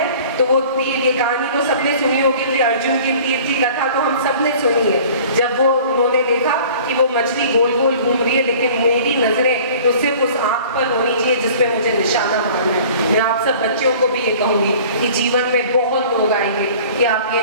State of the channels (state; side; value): inverted; both; correlation -0.47